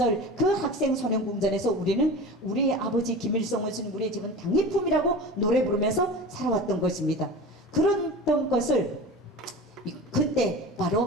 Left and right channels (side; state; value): both; normal; correlation 0.33